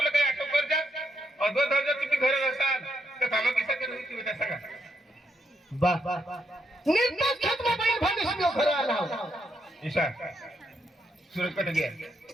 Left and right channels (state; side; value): normal; both; correlation 0.78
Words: काय आठव कर जा और दो दर्जा तुम्ही घर असाल तर कामा किसा करू तुम्ही तसा का बा निर्माण खेत में बैल भविष्य में घर आला ईशा सूरज कट गया